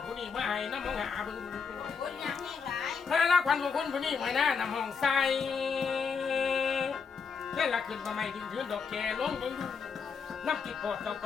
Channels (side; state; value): right; quieter; 5.7 dB